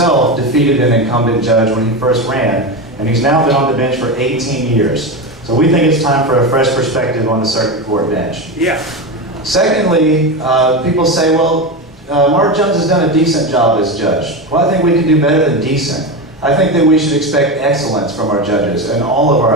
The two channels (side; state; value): both; normal; correlation 0.18